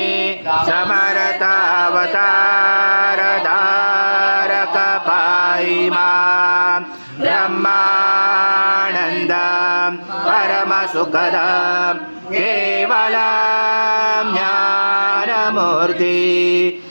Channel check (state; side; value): inverted; both; correlation -1.00